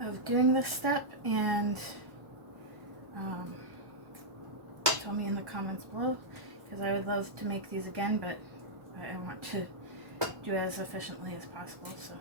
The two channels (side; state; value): left; late; 1.1 ms